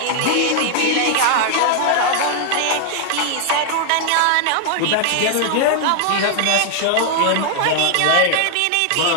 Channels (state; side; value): different; both; correlation 0.00